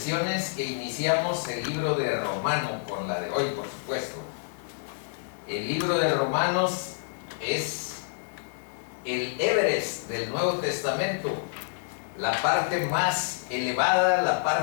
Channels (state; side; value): silent; right; digital silence